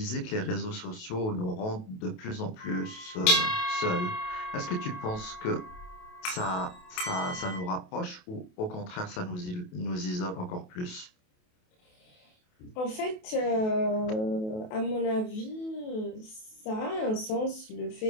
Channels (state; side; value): late; right; 28 ms